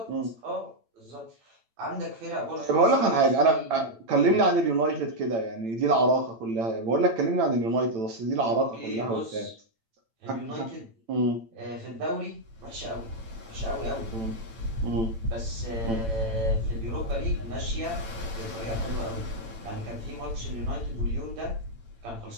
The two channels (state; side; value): late; left; 8.9 ms